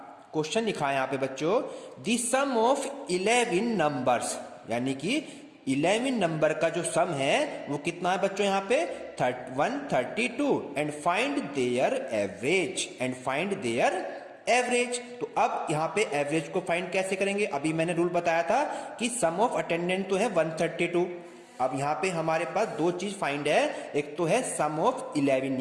क्वेश्चन लिखा है यहाँ पे बच्चों, द सम ऑफ 11 नंबर्स, यानी कि 11 नंबर का जो सम है वो कितना है बच्चों यहाँ पे 132, and find there average, and find there average. तो अब यहाँ पे एवरेज को फाइंड कैसे करेंगे, अभी मैंने रूल बताया था कि सम ऑफ अटेंडेंट तो है 132। अब यहाँ पे हमारे पास दो चीज फाइंड है, एक तो है सम ऑफ 11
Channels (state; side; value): identical; both; correlation 1.00